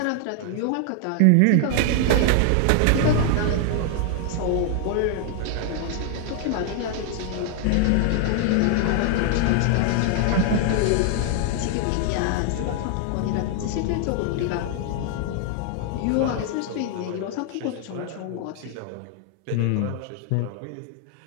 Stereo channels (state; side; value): different; both; correlation 0.00